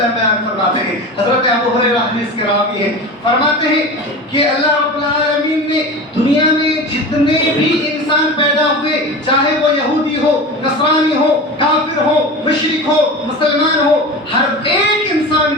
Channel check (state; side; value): normal; both; correlation 0.30